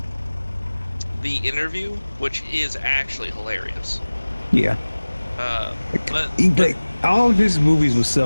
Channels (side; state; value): both; inverted; correlation -1.00